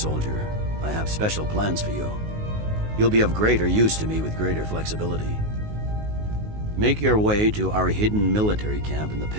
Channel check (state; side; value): late; left; 19 ms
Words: I have special plans for you. You'll be of greater use to me with greater flexibility. Make your way to our hidden military camp in the